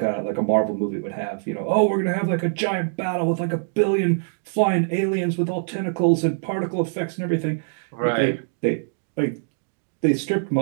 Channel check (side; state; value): left; silent; digital silence